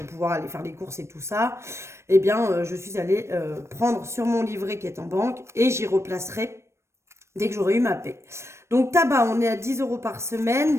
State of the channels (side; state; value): left; late; 0.13 ms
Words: aller faire les courses et tout ça, eh bien je suis allée prendre sur mon livret qui est en banque, et j'y replacerai dès que j'aurai eu ma paie. Donc tabac, on est à 10 € par semaine,